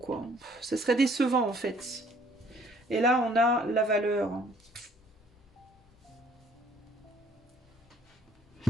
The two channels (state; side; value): normal; both; correlation 0.59